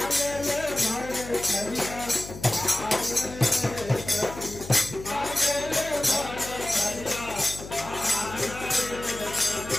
ले भर थरिया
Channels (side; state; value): left; noise; hum, 13 dB below the sound